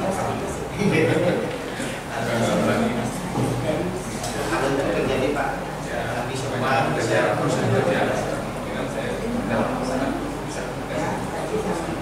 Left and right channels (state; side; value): identical; both; correlation 1.00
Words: Pak. Tapi semua bisa